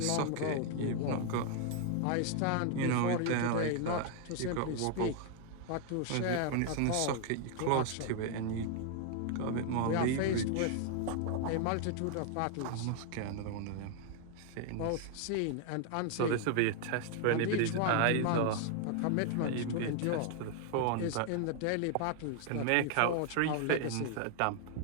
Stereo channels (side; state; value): both; different; correlation 0.00